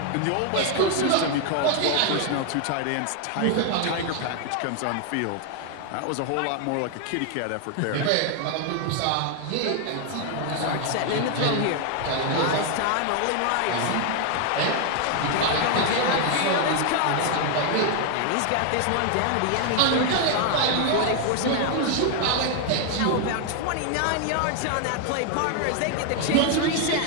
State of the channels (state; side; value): different; both; correlation 0.00